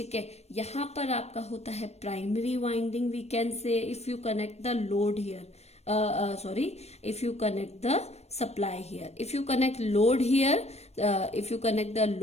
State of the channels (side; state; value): right; late; 0.31 ms